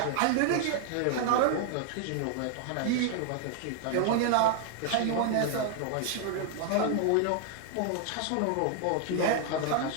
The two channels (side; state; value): both; different; correlation 0.00